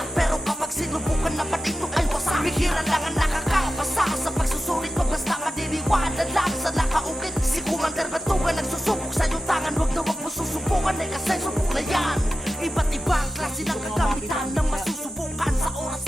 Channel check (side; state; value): both; normal; correlation 0.92